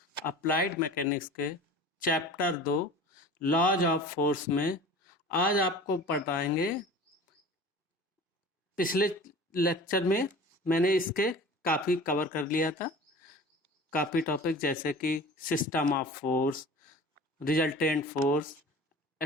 अप्लाइड मैकेनिक्स के चैप्टर 2 लॉज ऑफ फोर्स में आज आपको पढ़ाएंगे। पिछले लेक्चर में मैंने इसके काफ़ी कवर कर लिया था, काफ़ी टॉपिक जैसे कि system of force, resultant force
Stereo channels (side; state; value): both; normal; correlation 0.40